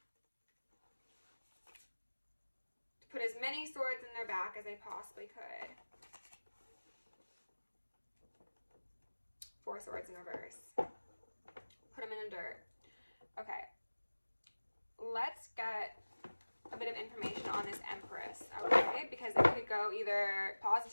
To put as many swords in their back as they possibly could. 4 swords in reverse. Put them in the dirt. Okay. Let's get a bit of information on this Empress, okay? Because it could go either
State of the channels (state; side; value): inverted; both; correlation -1.00